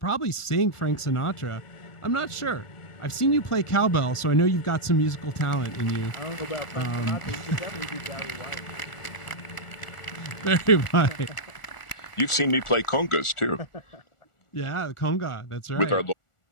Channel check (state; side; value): late; right; 1.4 ms